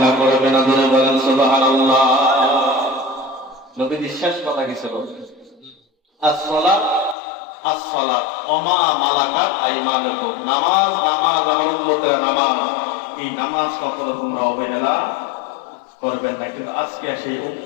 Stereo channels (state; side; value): drops out; right; at 7.2 s